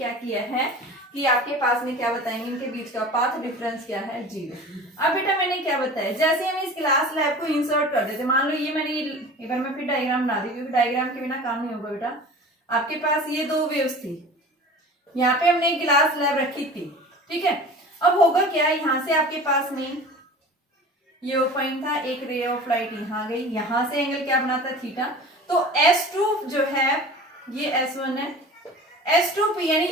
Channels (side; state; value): both; normal; correlation 0.38